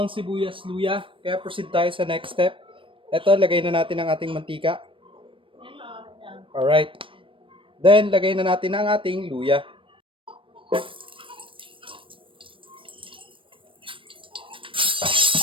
sibuyas, luya. Kaya proceed tayo sa next step. Ito, lagay na natin ang ating mantika. Alright. Then, lagay na natin ang ating luya.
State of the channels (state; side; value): late; left; 0.25 ms